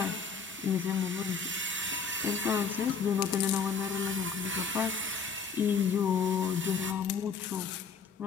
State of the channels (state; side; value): quieter; right; 5.6 dB